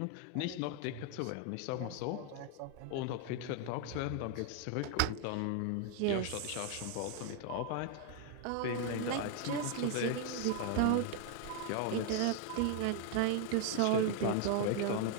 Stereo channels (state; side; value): different; both; correlation 0.00